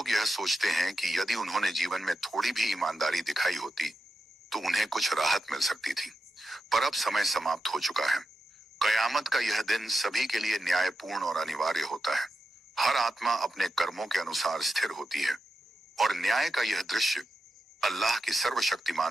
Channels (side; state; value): both; normal; correlation 0.88